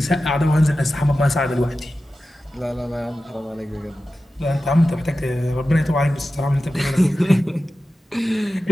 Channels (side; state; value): both; normal; correlation 0.94